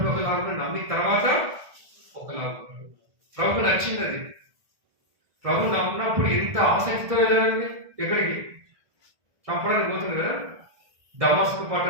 ఒకలాగా, నమ్మిన తర్వాత ఒకలాగా. ప్రభుకు నచ్చింది అది. ప్రభు నమ్మినప్పుడు ఎంత ఆసక్తితో వెళ్ళాలండి, ఎక్కడికి చంపడానికి పోతుంది కదా, దమస్కు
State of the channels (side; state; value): left; late; 1.7 ms